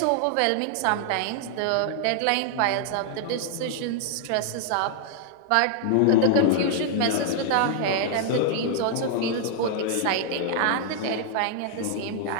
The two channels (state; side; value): different; both; correlation -0.01